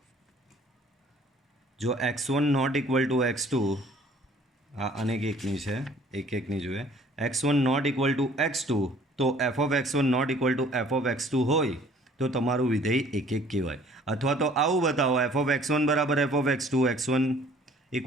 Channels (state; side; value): normal; both; correlation 0.55